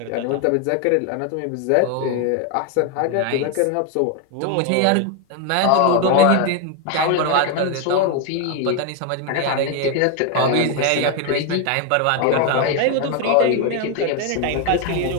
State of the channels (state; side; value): different; both; correlation 0.01